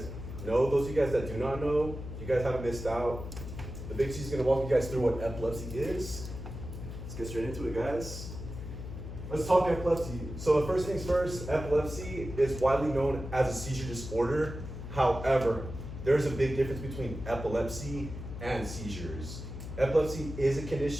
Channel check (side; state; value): left; noise; hum, 9 dB below the sound